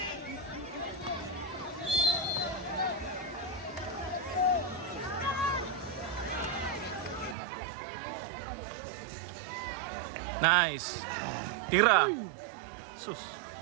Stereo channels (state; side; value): drops out; left; at 7.4 s